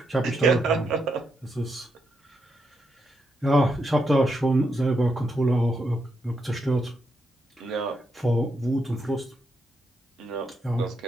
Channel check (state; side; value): normal; both; correlation 0.81